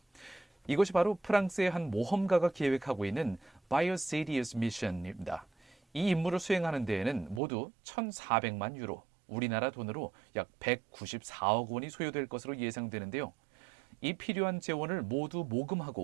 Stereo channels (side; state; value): left; drops out; at 7.4 s